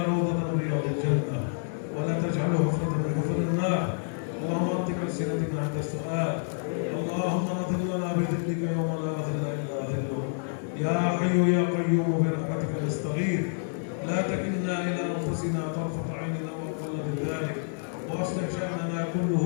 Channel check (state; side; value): silent; right; digital silence